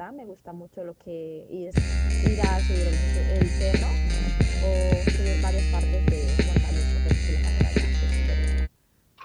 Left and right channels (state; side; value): identical; both; correlation 1.00